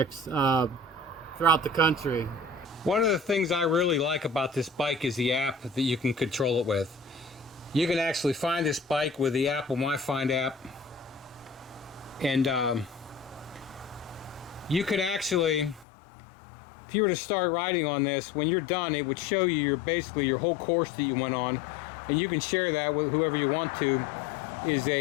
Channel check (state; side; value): drops out; right; at 15.9 s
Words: throughout the country. One of the things I really like about this bike is the app that you can control it with. You can actually find this bike with the Apple MyFind app, and you can actually, if you were to start riding on this, when you're done, it would show you basically your whole course that you went on, and you can share that with whoever you want to, is